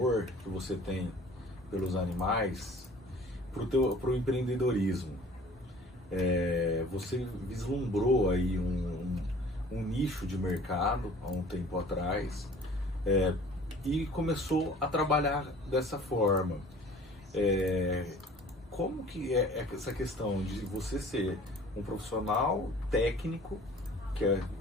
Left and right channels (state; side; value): normal; both; correlation 0.49